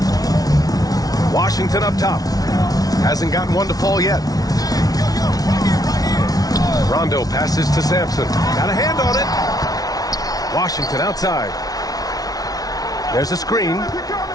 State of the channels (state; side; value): late; right; 0.18 ms